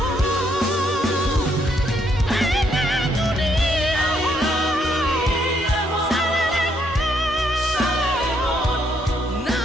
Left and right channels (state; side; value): normal; both; correlation 0.72